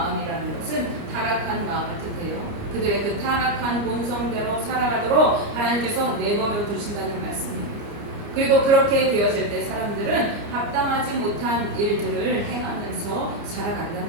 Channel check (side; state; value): left; late; 29 ms